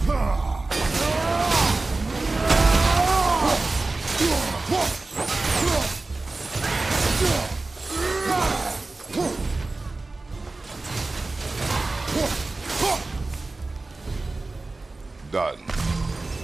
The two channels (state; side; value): quieter; left; 3.3 dB